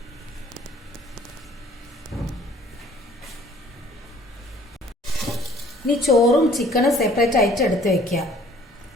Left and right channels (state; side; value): normal; both; correlation 0.55